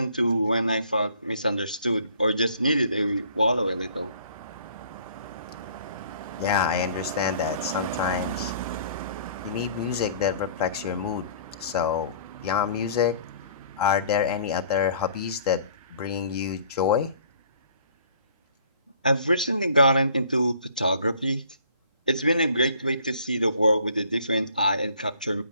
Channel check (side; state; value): both; inverted; correlation -0.54